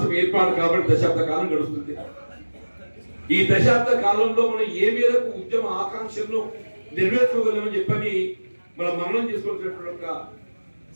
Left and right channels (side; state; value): both; inverted; correlation -1.00